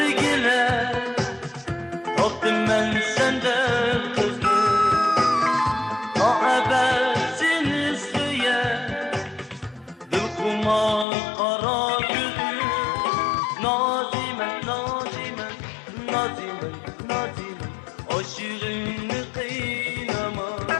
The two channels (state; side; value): drops out; right; at 11.1 s